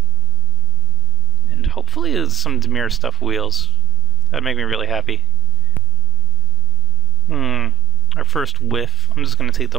And hopefully some Dimir stuff wheels. That'd make me really happy. Our first whiff. I'm just going to take the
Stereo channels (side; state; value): both; normal; correlation 0.29